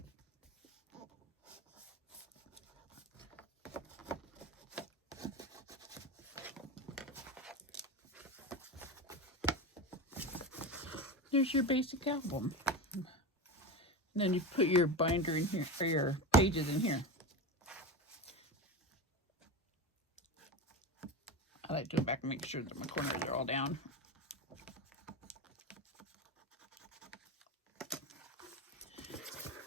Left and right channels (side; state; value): both; normal; correlation 0.22